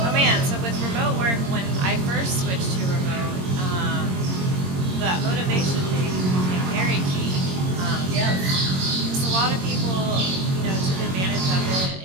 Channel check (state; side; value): late; left; 22 ms